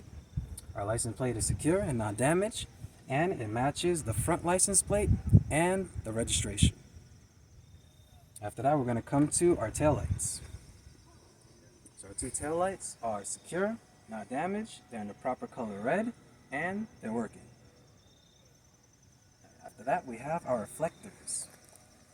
Our license plate is secure and not damaged, and it matches the front license plate and the registration. After that, we're going to come to our tail lights. So our 2 tail lights are secure, not damaged. They're in the proper color red, and they're working. After that, we have our reflectors.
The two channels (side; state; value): both; identical; correlation 1.00